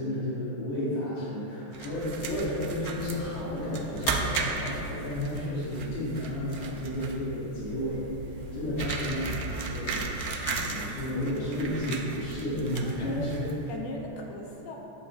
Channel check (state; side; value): late; right; 13 ms